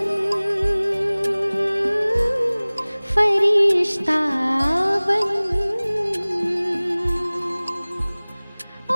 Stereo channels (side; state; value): both; inverted; correlation -1.00